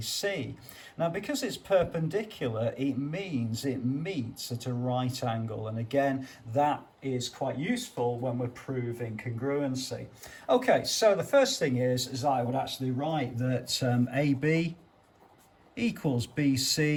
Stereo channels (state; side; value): identical; both; correlation 1.00